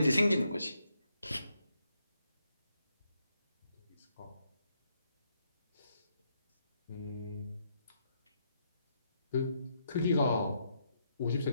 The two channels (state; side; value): inverted; both; correlation -0.77